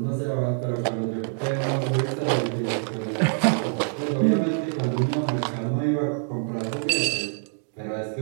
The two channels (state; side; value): silent; left; digital silence